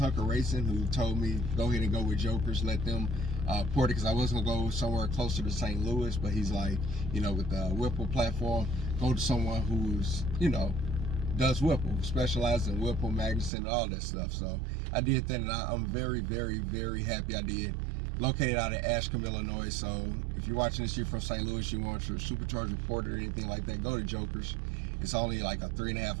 Racing, who told me go ahead and go with Jokerz, let them port it, because I was gonna go somewhere closer to St. Louis, but he's like, with the Whipple platform, go to someone who's does Whipple, specializes in Whipple, Magnuson, all that stuff. So I did that, and I'm very, very, very happy I did. Located out of Ashcombe, Illinois. So if you're watching this, you're from St. Louis, you want your supercharged reporter or anything like that, go to Jokerz. It's only like a 3.5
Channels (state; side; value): drops out; left; at 13.5 s